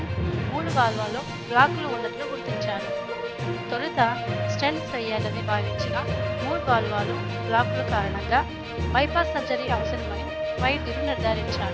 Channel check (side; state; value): both; identical; correlation 1.00